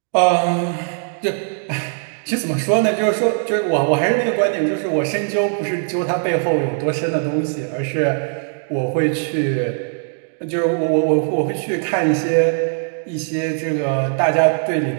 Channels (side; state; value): left; silent; 66 dB below the other